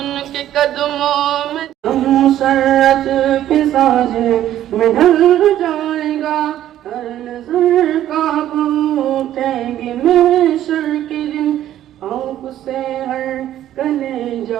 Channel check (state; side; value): quieter; left; 12.2 dB